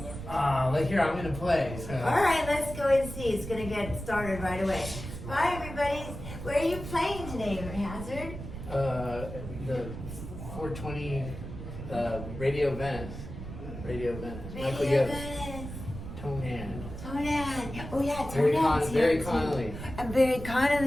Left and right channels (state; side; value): noise; right; rumble, 9 dB below the sound